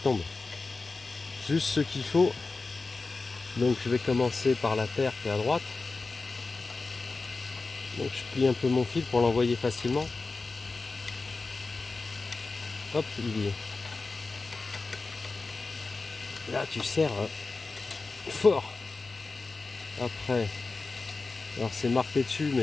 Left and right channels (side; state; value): right; quieter; 3.8 dB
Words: Juste ce qu'il faut. Donc, je vais commencer par la terre qui est à droite. Donc, je plie un peu mon fil pour l'envoyer facilement. Hop, il y est. Là, tu serres fort. Après, alors c'est marqué dessus,